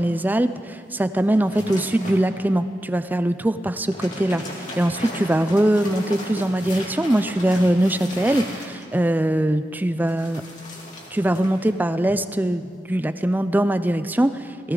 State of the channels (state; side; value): normal; both; correlation 0.91